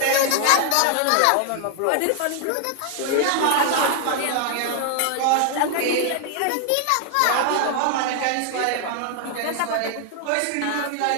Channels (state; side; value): different; both; correlation 0.00